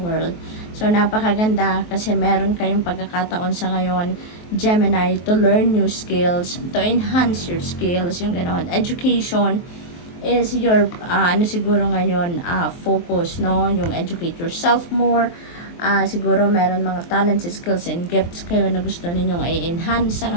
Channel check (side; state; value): right; late; 23 ms